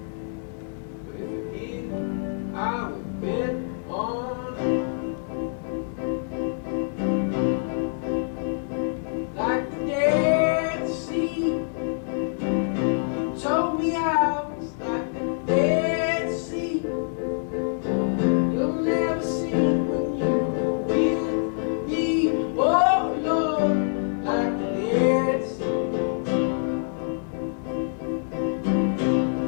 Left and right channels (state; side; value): silent; right; digital silence